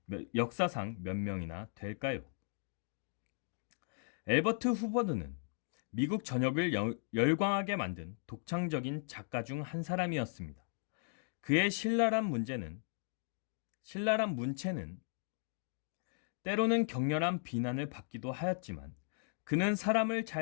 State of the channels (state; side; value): silent; right; digital silence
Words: 역사상 몇 명이나 될까요? 엘버트 후버드는 미국 전역을 열광하게 만든 독창적인 작가 중 한 사람이었습니다. 그의 신랄한 문체는 때로는 격렬한 비난을 받기도 하였지만 그는 사람을